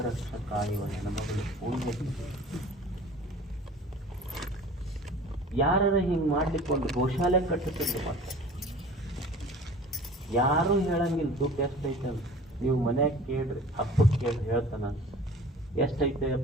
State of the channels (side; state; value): both; normal; correlation 0.44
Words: ಕಾಯುವ ಹೆಣ್ಮಗಳು ಫೂಲ್ವತಿ. ಯಾರ ಹಿಂಗ್ ಮಾಡ್ಲಿಕ್ಕೆ ಒಂದು ಗೋಶಾಲೆ ಕಟ್ಟುತ್ತಿಲ್ಲ. ಮತ್ತೆ ಯಾರು ಹೇಳಂಗಿಲ್ಲ ದುಡ್ಡು ಎಷ್ಟೈತೆ ಅಂತ. ನೀವು ಮನ್ಯಾಗ ಕೇಳ್ರಿ, ಹಬ್ಬಕ್ಕೆ ಕೇಳ್ರಿ, ಹೇಳ್ತಾನ